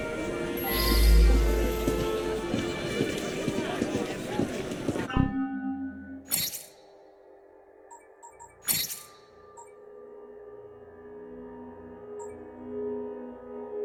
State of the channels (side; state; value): both; identical; correlation 1.00